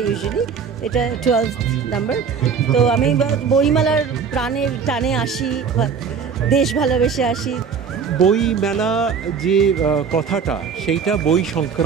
ইউজুয়ালি, এটা 12th নাম্বার। তো আমি বইমেলার প্রাণের টানে আসি, দেশ ভালোবেসে আসি। বই মেলা যে কথাটা, সেইটা বই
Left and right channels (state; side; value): quieter; left; 6.2 dB